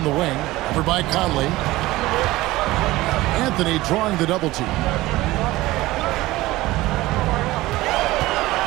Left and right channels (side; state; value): left; quieter; 18.2 dB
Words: the wing, over by Conley. Anthony drawing the double team.